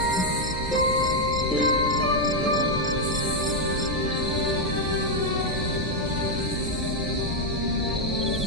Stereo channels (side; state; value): both; normal; correlation 0.00